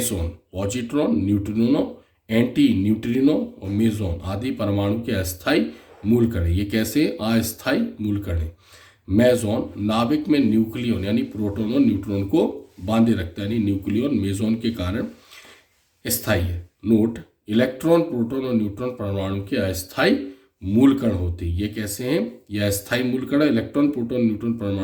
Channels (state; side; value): identical; both; correlation 1.00